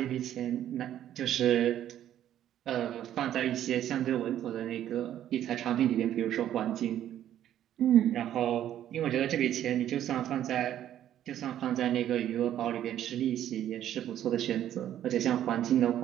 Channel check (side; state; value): left; quieter; 11.3 dB